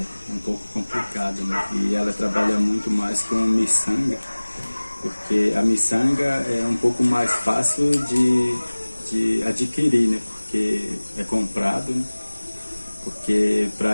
um pouco complicado, né? E ela trabalha muito mais com miçanga, porque a miçanga é um pouco mais fácil de adquirir, né? Porque é comprado, né? Porque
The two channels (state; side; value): inverted; both; correlation -1.00